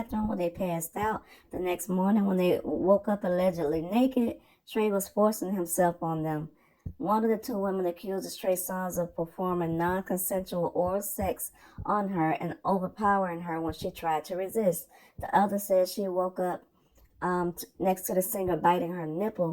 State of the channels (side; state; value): both; identical; correlation 1.00